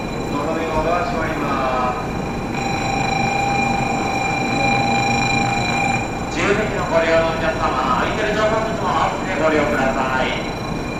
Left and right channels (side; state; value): both; identical; correlation 1.00